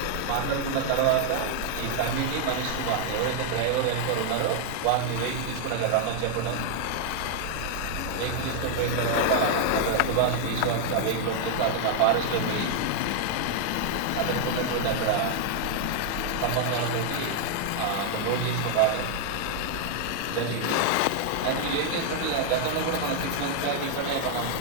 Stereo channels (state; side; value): different; both; correlation 0.00